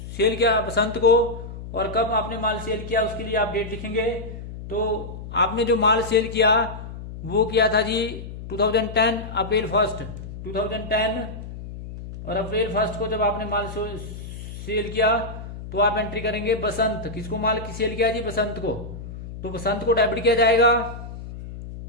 किया बसंत को, और कब आपने माल सेल किया उसके लिए आप डेट लिखेंगे। तो आपने जो माल सेल किया वो किया था जी 2010 अप्रैल 1 2010, और अप्रैल 1 को जब आपने माल सेल किया तो आप एंट्री करेंगे बसंत। किसको माल की सेल किया जी? बसंत को। तो बसंत को डेबिट किया जाएगा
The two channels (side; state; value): left; noise; hum, 11 dB below the sound